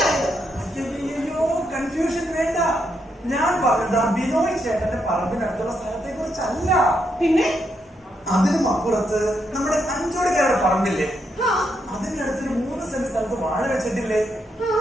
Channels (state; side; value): normal; both; correlation 0.79